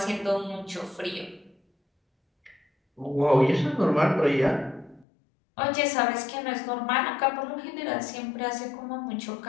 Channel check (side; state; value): right; drops out; at 5.1 s